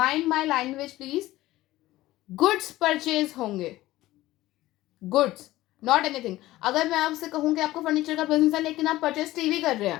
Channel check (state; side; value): quieter; right; 16.6 dB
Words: my language please, goods purchase होंगे, गुड्स नॉट एनीथिंग। अगर मैं आपसे कहूँ कि आपको फर्नीचर का बिजनेस है लेकिन आप परचेज टीवी कर रहे हैं,